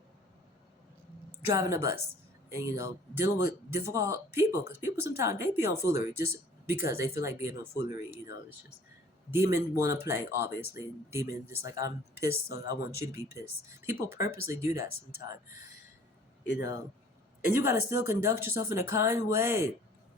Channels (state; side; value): normal; both; correlation 0.52